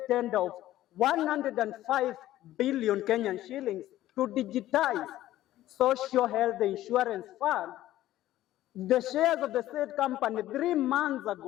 tender of 105 billion Kenyan shillings to digitize Social Health Insurance Fund. The shares of the said company 3 months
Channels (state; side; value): quieter; right; 14.3 dB